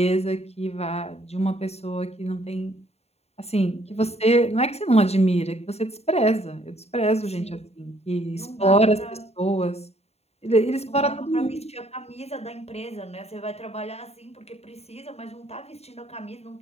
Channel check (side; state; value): right; late; 0.30 ms